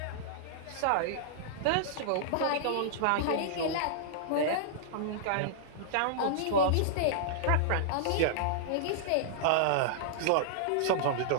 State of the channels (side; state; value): both; different; correlation -0.02